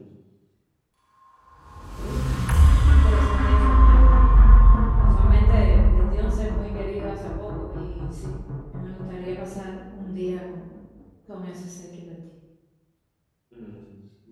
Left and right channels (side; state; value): both; identical; correlation 1.00